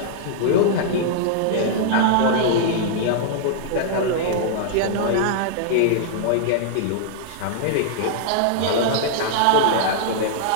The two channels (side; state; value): both; different; correlation -0.01